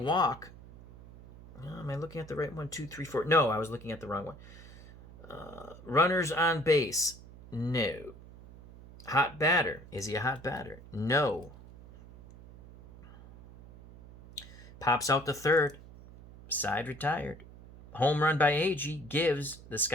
Am I looking at the right one? 2-3-4. No, I was looking at the wrong one. Runners on base. No. Hot batter. Is he a hot batter? No. Pops out the third. Side retired. Home run by Agee gives the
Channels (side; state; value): right; noise; hum, 19 dB below the sound